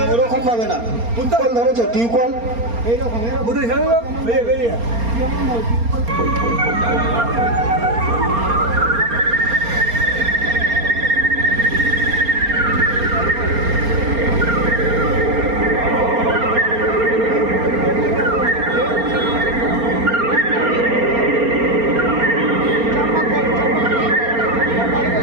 ওরকম ভাবে না, টিউবওয়েল ধরেছো, টিউবওয়েল এইরকম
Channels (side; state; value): left; late; 4.3 ms